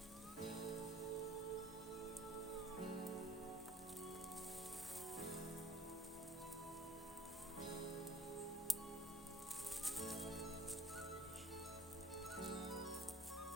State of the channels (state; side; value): normal; both; correlation 0.53